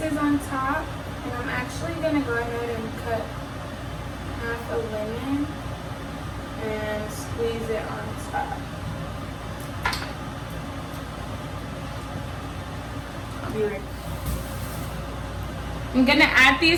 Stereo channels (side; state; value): both; identical; correlation 1.00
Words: on top, and I'm actually going to go ahead and cut half a lemon and squeeze it on top. I'll be right back. I'm going to add